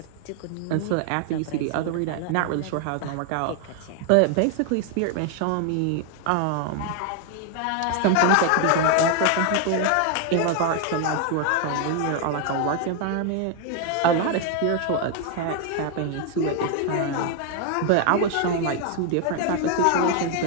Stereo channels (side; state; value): both; different; correlation 0.01